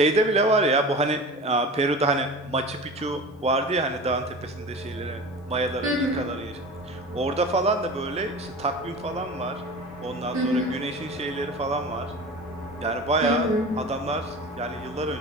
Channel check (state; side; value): normal; both; correlation 0.34